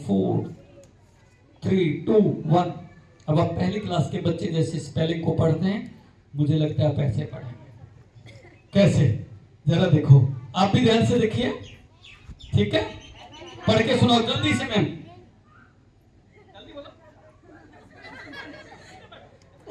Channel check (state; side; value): identical; both; correlation 1.00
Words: 4 3 2 1। अब आप पहली क्लास के बच्चे जैसे स्पेलिंग को पढ़ते हैं, मुझे लगता है आप ऐसे पढ़ेंगे। कैसे, जरा देखो, आप भी ध्यान से देखिए। ठीक है, पढ़ के सुनाओ जल्दी से। मैम जल्दी बोलो।